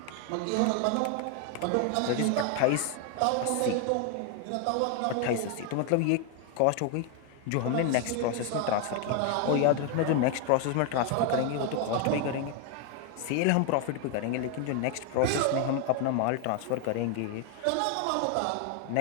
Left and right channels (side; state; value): both; different; correlation 0.01